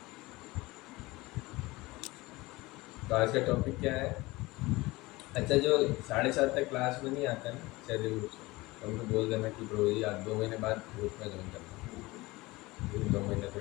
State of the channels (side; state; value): right; quieter; 21.2 dB